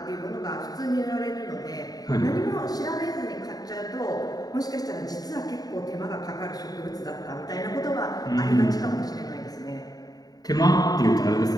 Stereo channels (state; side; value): late; right; 0.18 ms